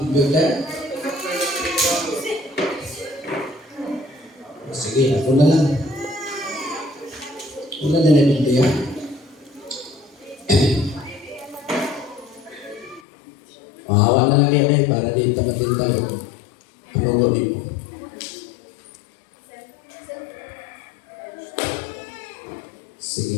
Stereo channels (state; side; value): drops out; right; at 13.0 s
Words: computer? Sige, ako na lang. Wala na yung Biblia. Mahawa na lang yan para di tamatin tayo. Panunod mo.